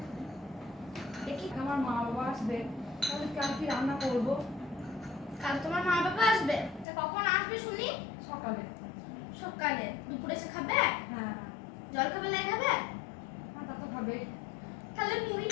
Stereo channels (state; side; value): drops out; right; at 6.9 s